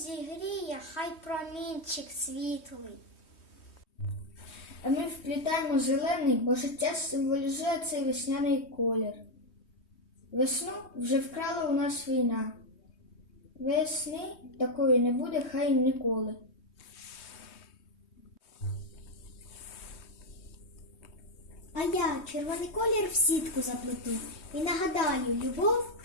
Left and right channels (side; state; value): right; late; 3.2 ms